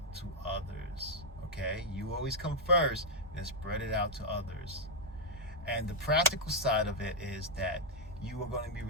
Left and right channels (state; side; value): normal; both; correlation -0.02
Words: to others, okay? You always come first, then spread it out to others. And the practical side of it is that you are going to be